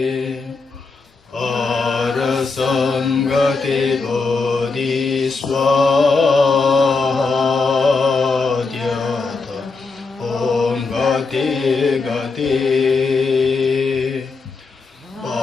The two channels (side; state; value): right; quieter; 4.2 dB